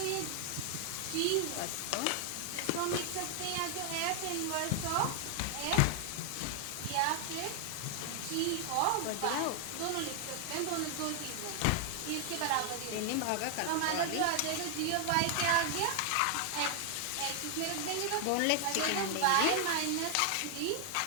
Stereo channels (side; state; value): both; different; correlation 0.00